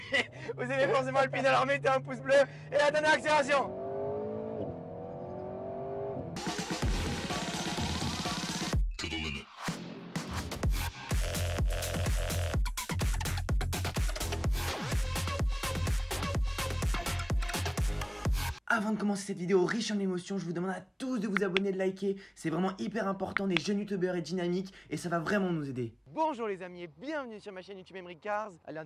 alors mettez un pouce bleu et la dernière accélération. Avant de commencer cette vidéo riche en émotions, je vous demande à tous de vous abonner, de liker. C'est vraiment hyper important, des jeunes youtubeurs et dynamiques et ça va vraiment nous aider. Bonjour les amis et bienvenue sur ma chaîne YouTube Emery Cars. À l'un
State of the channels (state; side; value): identical; both; correlation 1.00